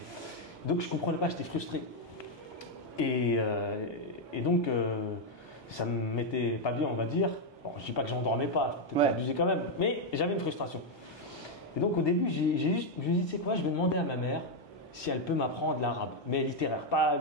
Donc je ne comprenais pas, j'étais frustré. Et donc ça ne me mettait pas bien, on va dire. Bon, je ne dis pas que j'en dormais pas, peut-être pas abusé quand même, mais j'avais une frustration. Et donc au début, je me suis dit, tu sais quoi, je vais demander à ma mère si elle peut m'apprendre l'arabe, mais littéraire, pas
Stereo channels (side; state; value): right; late; 1.2 ms